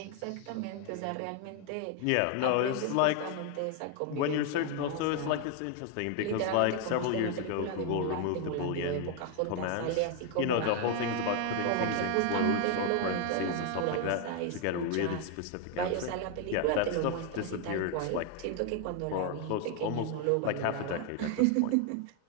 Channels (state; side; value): different; both; correlation 0.01